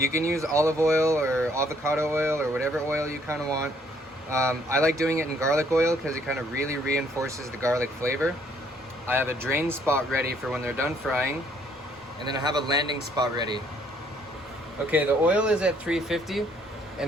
can use olive oil or avocado oil or whatever oil you kind of want. I like doing it in garlic oil because it kind of really reinforces the garlic flavor. I have a drain spot ready for when they're done frying, and then I have a landing spot ready. Okay, the oil is at 350,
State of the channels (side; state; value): both; normal; correlation 0.65